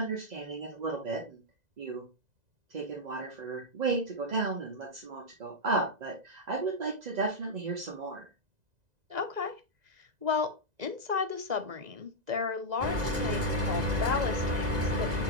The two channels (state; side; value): late; left; 2.0 ms